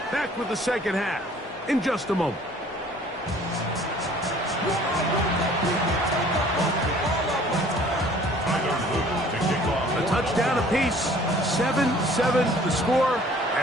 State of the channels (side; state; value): both; normal; correlation 0.53